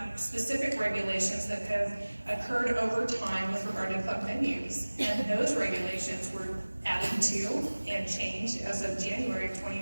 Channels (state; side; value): inverted; both; correlation -1.00